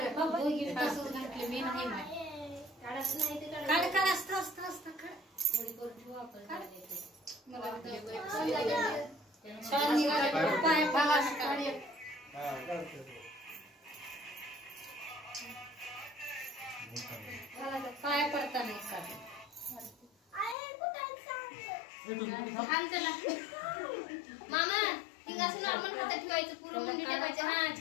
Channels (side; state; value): right; drops out; at 20.6 s